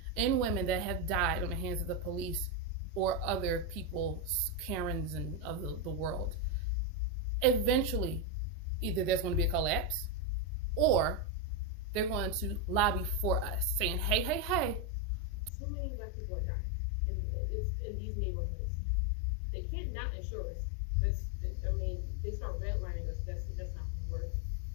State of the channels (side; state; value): right; drops out; at 15.5 s